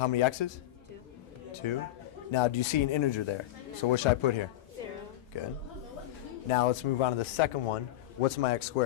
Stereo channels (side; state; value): right; quieter; 14.4 dB